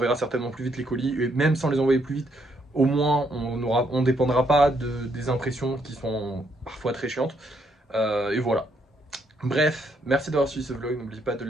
certainement plus vite les colis, et même sans les envoyer plus vite, au moins on dépendra pas des impressions qui sont parfois très chiantes. Et voilà. Bref, merci d'avoir suivi ce vlog, n'oubliez pas de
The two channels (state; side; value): normal; both; correlation 0.73